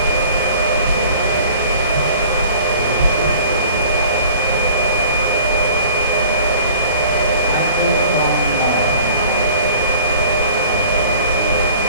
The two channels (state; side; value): inverted; both; correlation -0.49